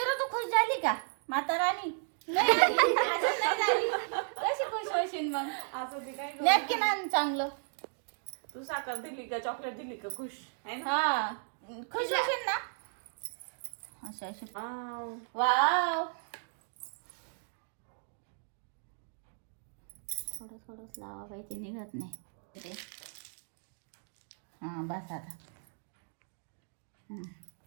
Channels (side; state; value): left; silent; digital silence